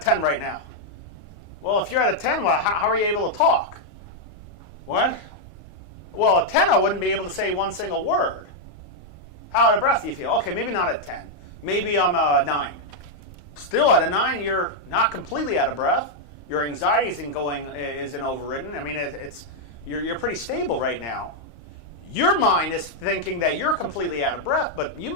right now. Well, if you're at a 10, well, how are you able to talk? What? Well, at 10, I wouldn't be able to say one single word. How out of breath do you feel? Okay, maybe not at 10. Maybe I'm a 9. Still at a 9, you're not completely out of breath. Your anxiety isn't overridden. I mean, you're pretty stable right now. Your mind is thinking that you're completely out of breath, but you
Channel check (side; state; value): right; late; 32 ms